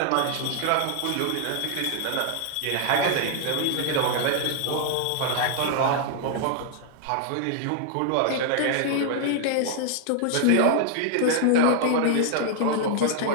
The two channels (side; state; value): both; different; correlation 0.00